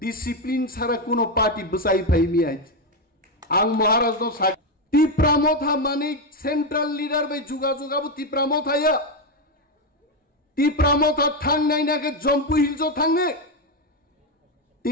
ছাড়া কোনো পার্টি বসাই ফাইমি আইজ আং মহারাজ নো सा তিপ্রামথা মানিক সেন্ট্রাল লিডার বাই যোগাযোগাবো তিপ্রামথায়া तिप्रामथा थांग नाइनाके जम्पु हिल्सो थांगे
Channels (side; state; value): both; normal; correlation 0.08